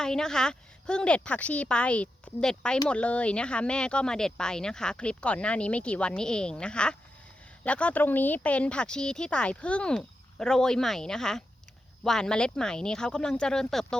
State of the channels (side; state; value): both; normal; correlation 0.87